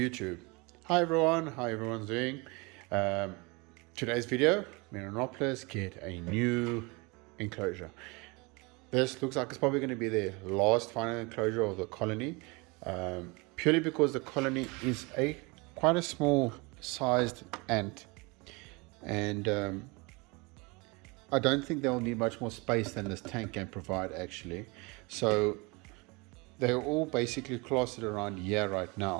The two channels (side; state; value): left; quieter; 27.4 dB